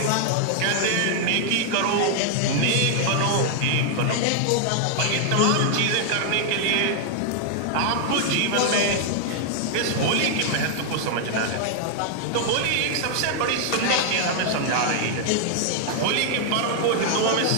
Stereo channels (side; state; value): both; different; correlation 0.00